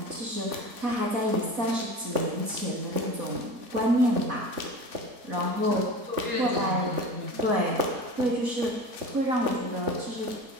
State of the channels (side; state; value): left; late; 4.1 ms